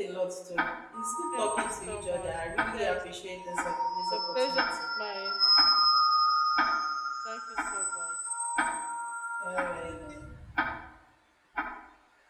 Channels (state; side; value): identical; both; correlation 1.00